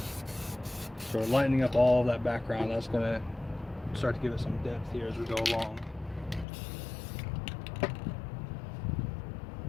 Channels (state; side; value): drops out; right; at 6.5 s